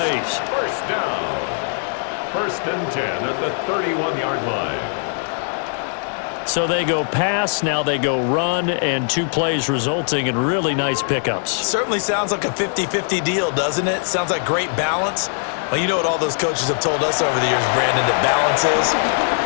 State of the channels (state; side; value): silent; right; 63 dB below the other